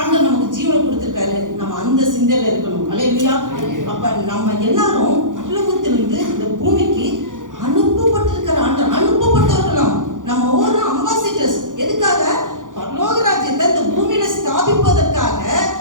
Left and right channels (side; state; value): left; late; 0.88 ms